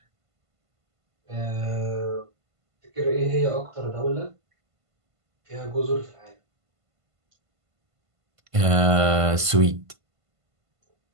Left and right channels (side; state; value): left; late; 1.5 ms